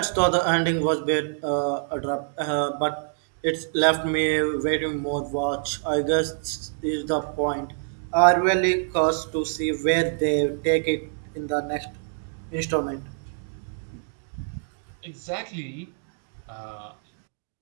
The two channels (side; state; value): left; silent; digital silence